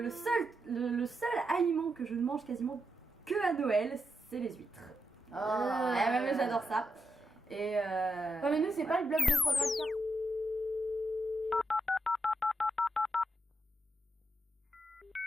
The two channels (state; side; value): normal; both; correlation 0.84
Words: seul aliment que je ne mange quasiment que à Noël, c'est les huîtres. Ouais, mais j'adore ça. Et Ouais, mais nous c'est pas le bloc de foie gras de carte.